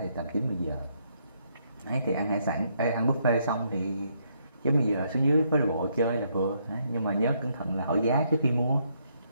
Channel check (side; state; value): both; inverted; correlation -0.73